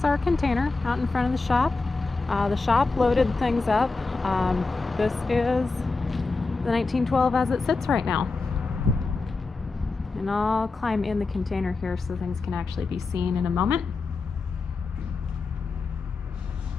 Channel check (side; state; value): right; quieter; 3.9 dB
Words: our container out in front of the shop. The shop loaded things up. This is the 1912 as it sits right now. And I'll climb in the container here so things can actually be seen in a moment.